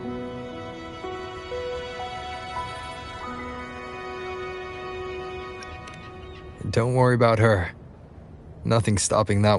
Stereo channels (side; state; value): both; identical; correlation 1.00